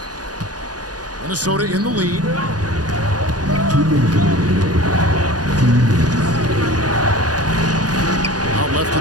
Minnesota in the lead. Out left to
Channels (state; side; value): late; left; 0.69 ms